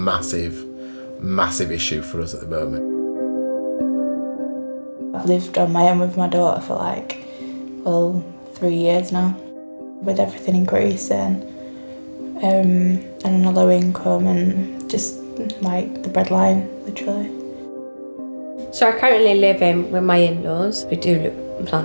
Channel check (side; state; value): both; inverted; correlation -1.00